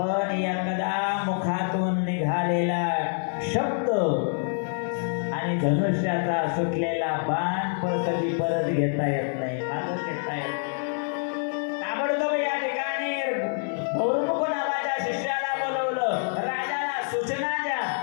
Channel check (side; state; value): right; silent; 58 dB below the other